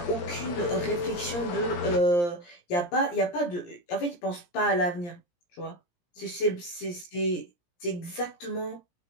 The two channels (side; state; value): right; late; 17 ms